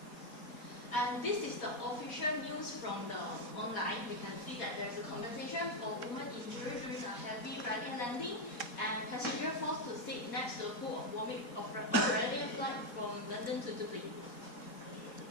And this is the official news from the online. We can see that there's a compensation for woman injured during a heavy Ryanair landing and passenger forced to sit next to a pool of vomit of Ryanair flight from London to Dublin.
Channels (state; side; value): late; right; 4.2 ms